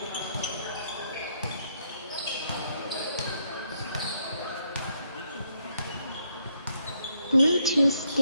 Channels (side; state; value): both; inverted; correlation -0.75